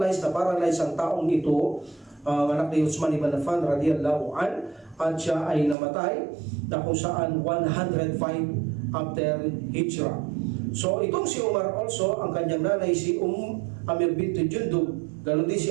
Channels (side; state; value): left; drops out; at 5.8 s